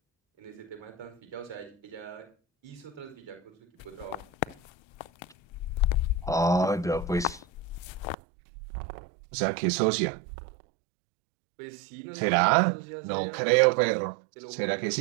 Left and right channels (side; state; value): left; drops out; at 8.2 s